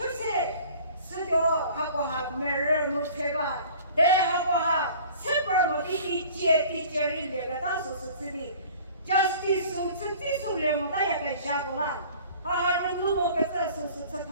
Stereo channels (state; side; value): inverted; both; correlation -0.47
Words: 是是的好不好没人没车吧对好不好7-8么的接人那个当时是这里justice 是这种人大家给下过来好人如果给这是